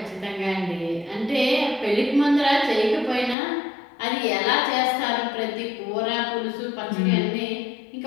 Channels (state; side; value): drops out; right; at 3.4 s